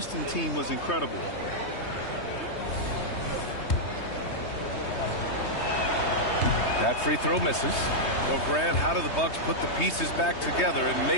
team was incredible. That free throw misses. Well, Grant, how do the Bucks put the pieces back together and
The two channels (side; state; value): right; late; 3.2 ms